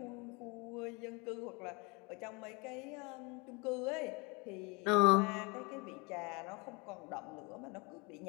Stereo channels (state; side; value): quieter; right; 28.9 dB